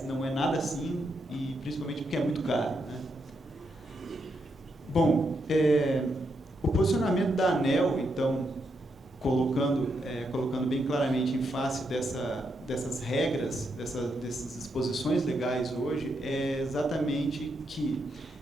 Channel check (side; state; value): both; normal; correlation 0.81